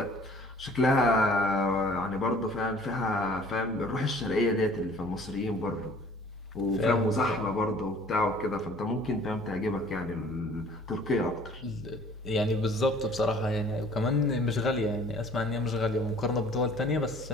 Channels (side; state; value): both; normal; correlation 0.52